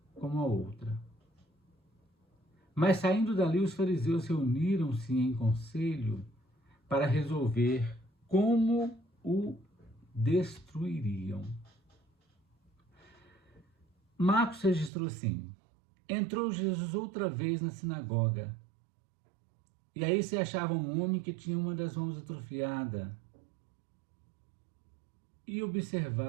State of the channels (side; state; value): left; drops out; at 14.9 s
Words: como a outra. Mas saindo dali, os fariseus reuniram-se em conselho para resolver como o destruiriam. Marcos registrou assim: entrou Jesus outra vez na sinagoga, e aí se achava um homem que tinha uma das mãos atrofiada, e